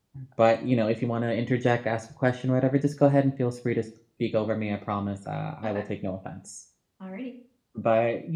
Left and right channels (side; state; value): both; identical; correlation 1.00